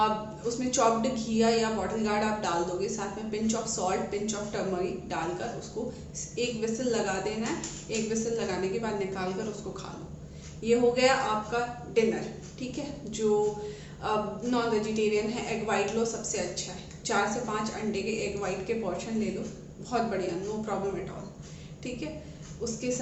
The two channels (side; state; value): both; identical; correlation 1.00